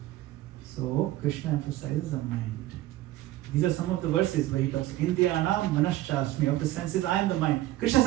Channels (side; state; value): left; quieter; 15.7 dB